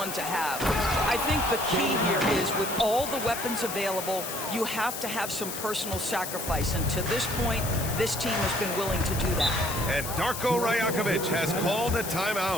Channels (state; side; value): noise; left; hiss, 7 dB below the sound